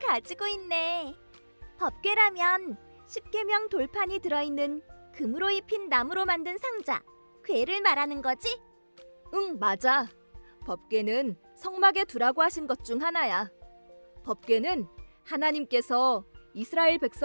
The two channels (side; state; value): both; inverted; correlation -1.00